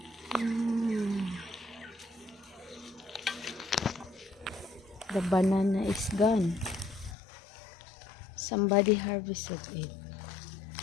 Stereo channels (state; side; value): drops out; right; at 7.2 s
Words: The banana is gone. Somebody harvested it.